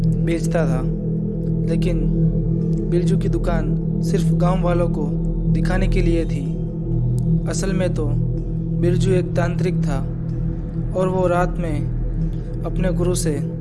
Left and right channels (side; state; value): both; identical; correlation 1.00